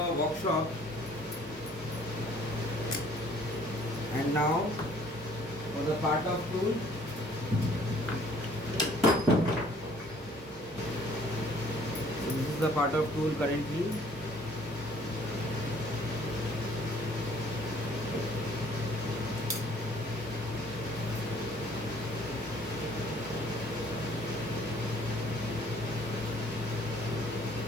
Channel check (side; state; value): both; normal; correlation 0.57